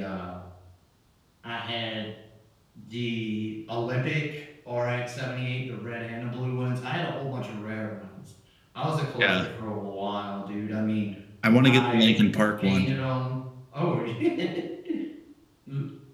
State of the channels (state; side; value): identical; both; correlation 1.00